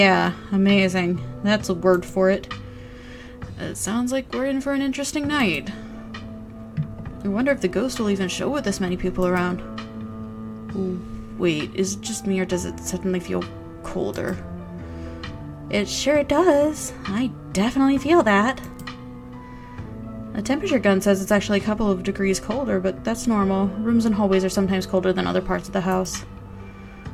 amazing. That's a word for it. It sounds like we're in for an interesting night. I wonder if the ghost will even show with this many people around. Ooh, wait, is it just me or does it suddenly feel colder? It sure does. I definitely feel that. The temperature gun says it's actually a couple of degrees colder, but that's normal. Rooms and hallways are sometimes colder than other parts of the house.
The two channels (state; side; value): identical; both; correlation 1.00